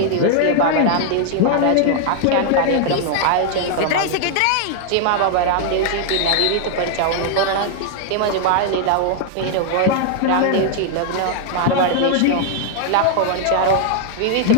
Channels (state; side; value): different; both; correlation 0.00